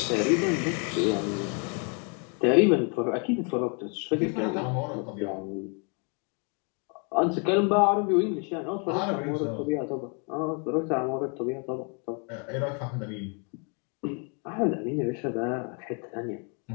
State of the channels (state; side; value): quieter; right; 37.7 dB